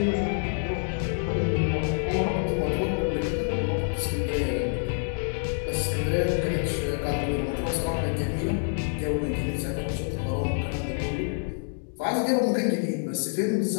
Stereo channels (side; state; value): right; silent; digital silence